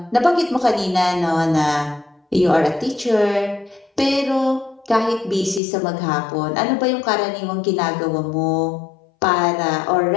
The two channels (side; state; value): right; drops out; at 5.6 s